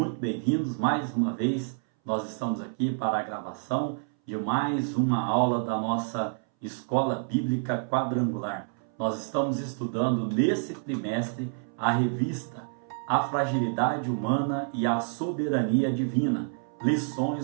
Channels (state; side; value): silent; left; 59 dB below the other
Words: bem-vindos. Mais uma vez, nós estamos aqui para a gravação de mais uma aula da nossa Escola Bíblica Quadrangular. Nós estamos estudando nesse trimestre a revista A Fragilidade Humana e a Soberania Divina,